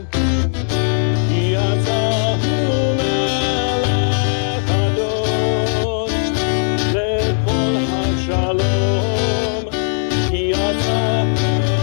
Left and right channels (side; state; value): right; silent; digital silence